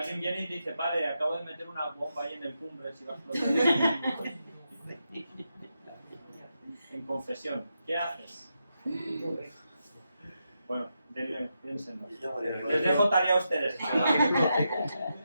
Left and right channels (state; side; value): inverted; both; correlation -0.85